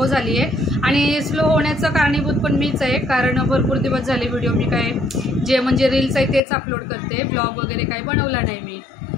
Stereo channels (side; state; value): right; drops out; at 6.4 s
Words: झाली आहे आणि स्लो होण्याचं कारणीभूत पण मीच आहे कारण भरपूर दिवस झाले व्हिडिओ मी काय जे म्हणजे रील्स आहे तेच अपलोड करते, ब्लॉग वगैरे काही बनवला नाही मी.